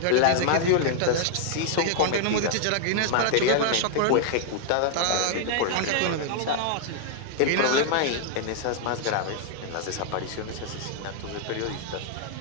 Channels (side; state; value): both; different; correlation 0.00